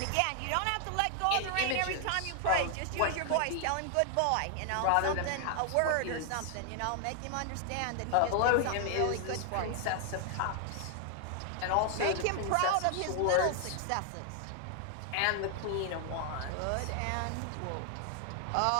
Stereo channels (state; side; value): different; both; correlation 0.00